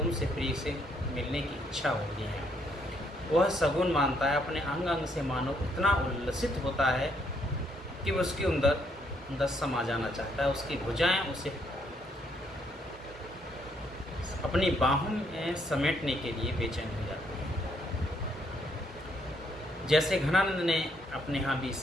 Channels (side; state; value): both; normal; correlation 0.72